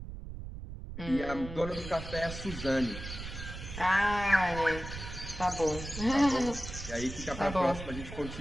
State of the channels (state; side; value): noise; right; rumble, 9 dB below the sound